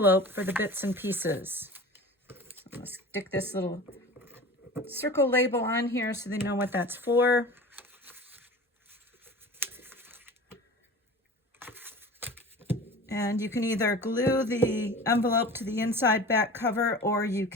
for the bits and pieces. So I'm going to stick this little circle label on here so they know what that's for. And you can either glue the envelope to the inside back cover, or you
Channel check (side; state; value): both; normal; correlation 0.37